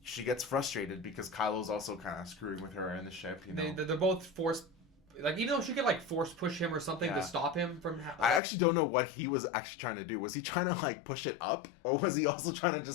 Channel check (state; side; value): drops out; right; at 8.4 s